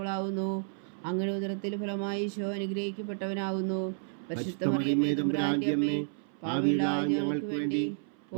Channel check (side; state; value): left; silent; 56 dB below the other